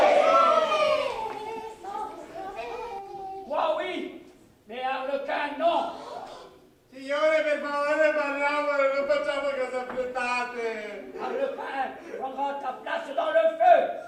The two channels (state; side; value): identical; both; correlation 1.00